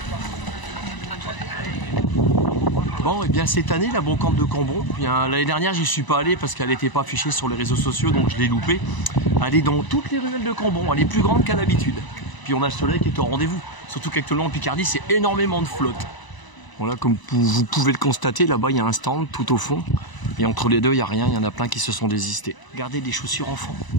Bon, et bien cette année, la brocante de Cambon, l'année dernière, j'y suis pas allé parce qu'elle n'était pas affichée sur les réseaux sociaux, donc je l'ai loupée. Elle est dans toutes les ruelles de Cambon, elle est plus grande qu'à l'habitude. Puis on a le soleil qui est au rendez-vous, surtout qu'actuellement en Picardie, c'est énormément de flotte. Voilà, comme vous pouvez le constater, là-bas, il y a un stand tout au fond. Et entre les deux, il n'y a rien, il y en a plein qui se sont désistés. Regardez des chaussures enfants.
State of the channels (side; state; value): right; late; 1.0 ms